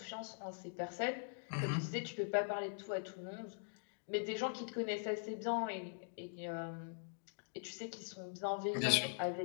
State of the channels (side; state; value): right; silent; digital silence